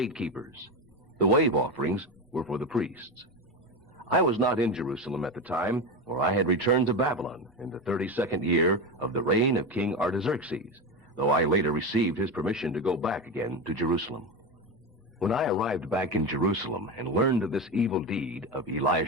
The wave offerings were for the priests. I was not in Jerusalem at the time, for I had returned to Babylon in the 32nd year of the reign of King Artaxerxes, though I later received his permission to go back again to Jerusalem. When I arrived back in Jerusalem and learned of this evil deed of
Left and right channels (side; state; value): both; normal; correlation 0.18